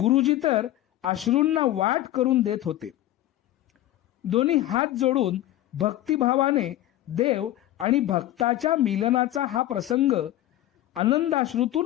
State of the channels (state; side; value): quieter; right; 14.2 dB